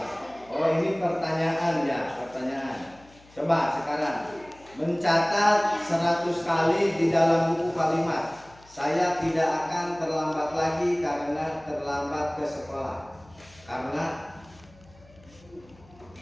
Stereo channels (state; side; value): noise; left; hum, 26 dB below the sound